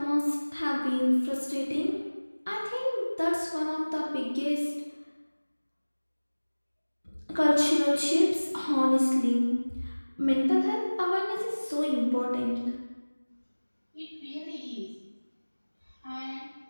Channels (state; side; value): inverted; both; correlation -1.00